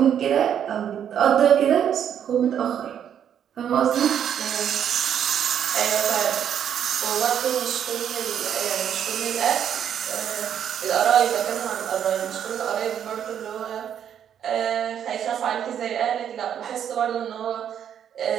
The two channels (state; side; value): quieter; left; 9.1 dB